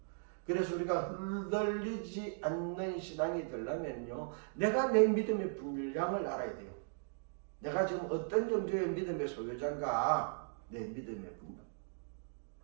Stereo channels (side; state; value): left; silent; digital silence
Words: 그래서 우리가 흔들리지 않는 신앙이 되려면요, 내가 내 믿음의 분량을 알아야 돼요. 내가 지금 어떤 정도의 믿음의 소유자인가, 내 믿음의 분량.